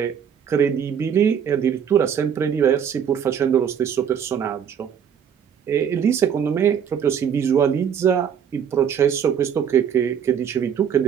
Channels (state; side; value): quieter; left; 8.0 dB